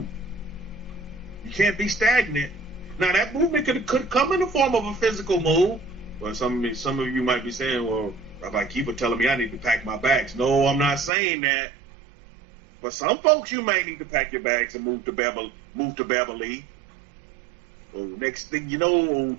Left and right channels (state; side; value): drops out; left; at 11.1 s